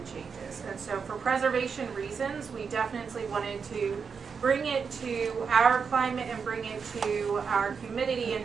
changes. And so for preservation reasons, we definitely wanted to bring it to our climate and bring it to our humidity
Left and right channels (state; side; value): quieter; left; 5.9 dB